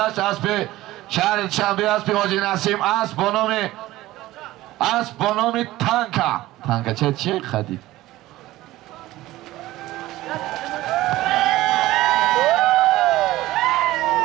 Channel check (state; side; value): quieter; left; 16.8 dB